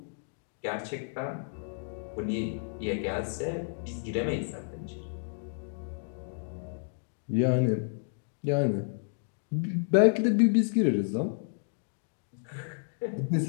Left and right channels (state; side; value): silent; right; digital silence